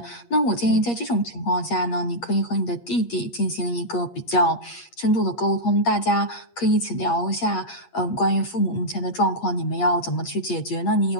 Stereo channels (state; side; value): late; right; 8.5 ms